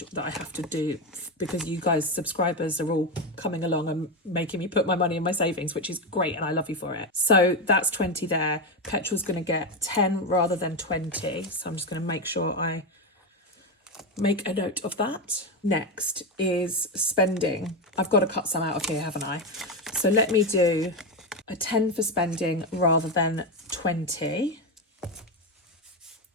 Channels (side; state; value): both; normal; correlation 0.12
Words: that I have to do because you guys, subscribers, are all coming along and making me put my money in my savings, which is great and I love you for it. So that's 20 there. Petrol's going to get 10 rather than 20. So I'm just going to make sure I make a note of that. Next is spending. I've got to cut some out of here, haven't I? So let me do a 10 for spending rather than 20.